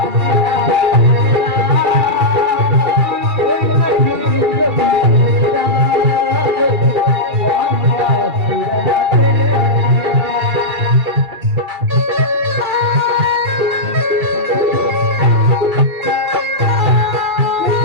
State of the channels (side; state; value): left; late; 2.4 ms